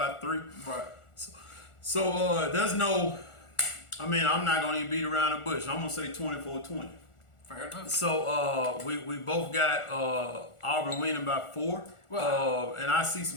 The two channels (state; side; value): late; right; 1.4 ms